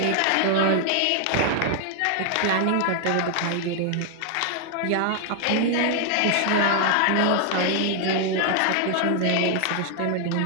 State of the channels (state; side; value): different; both; correlation 0.00